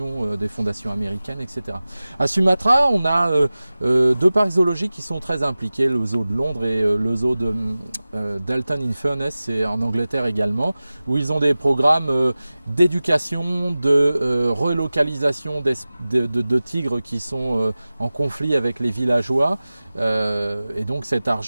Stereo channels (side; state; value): both; inverted; correlation -0.97